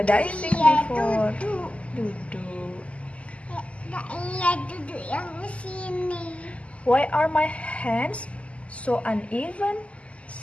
diving before. Duduk. Iya, duduk yang sini. Why are my hands so uneven?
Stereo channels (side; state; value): right; late; 0.062 ms